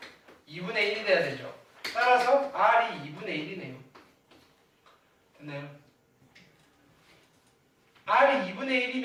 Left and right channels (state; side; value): identical; both; correlation 1.00